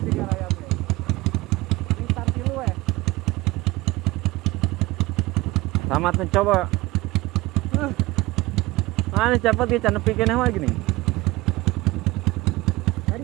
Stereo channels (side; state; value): left; quieter; 20.5 dB